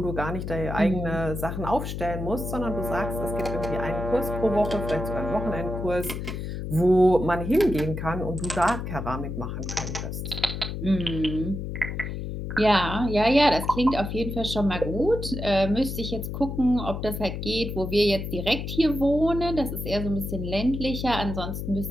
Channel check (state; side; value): noise; left; hum, 5 dB below the sound